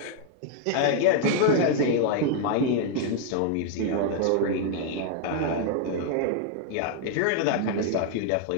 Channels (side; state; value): both; different; correlation 0.00